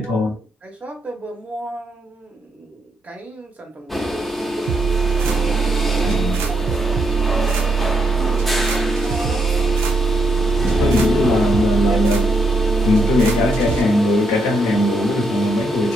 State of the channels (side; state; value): both; normal; correlation 0.78